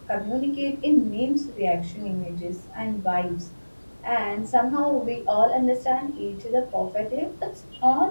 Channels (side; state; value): both; inverted; correlation -1.00